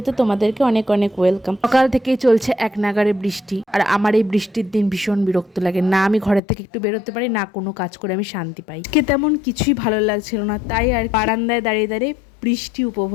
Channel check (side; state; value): right; drops out; at 6.4 s